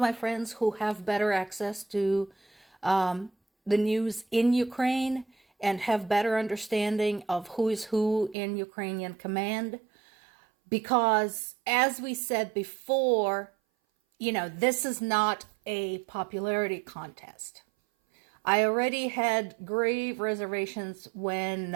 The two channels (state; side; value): drops out; left; at 8.3 s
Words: friends who have better access to the news in Ukraine and have better understanding of who is who in Ukrainian command. Because as we said before, this is not a popularity contest. I already had grave reservations when